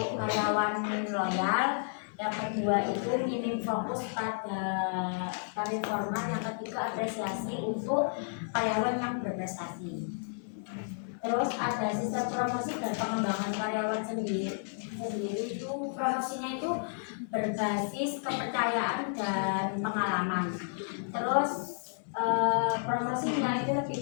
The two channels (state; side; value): silent; right; 57 dB below the other